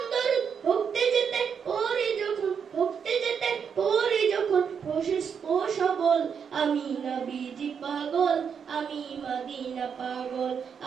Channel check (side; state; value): left; quieter; 6.9 dB